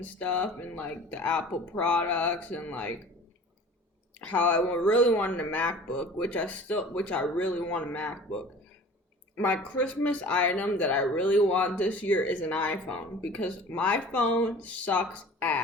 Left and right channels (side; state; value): both; normal; correlation 0.43